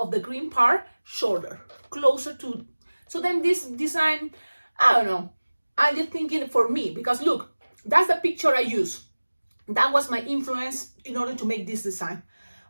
the green part shorter, closer to, so then this design, I don't know, I'm just thinking for me, because look, that's the picture I use. That was my influence in order to make this design.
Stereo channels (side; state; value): both; inverted; correlation -1.00